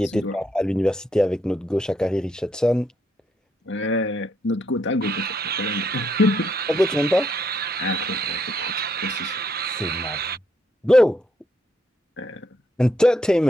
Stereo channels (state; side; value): normal; both; correlation 0.75